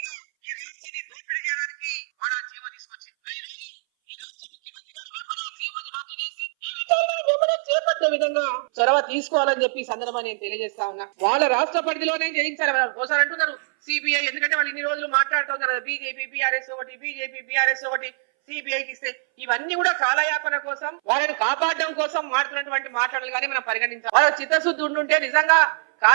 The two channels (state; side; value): silent; left; 61 dB below the other